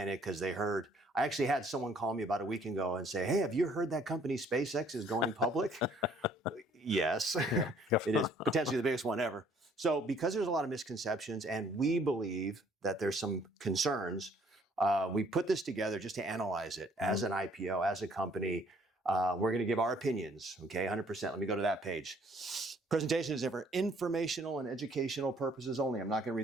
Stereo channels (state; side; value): normal; both; correlation 0.61